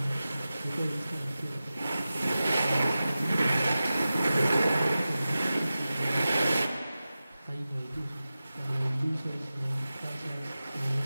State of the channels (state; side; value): inverted; both; correlation -0.95